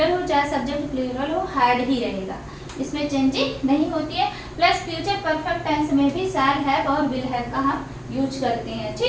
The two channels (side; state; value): both; identical; correlation 1.00